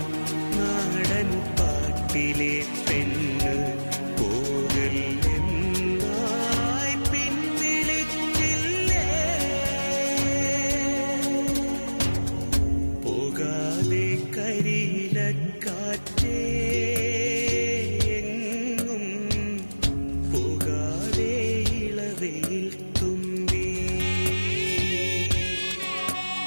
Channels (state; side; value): inverted; both; correlation -1.00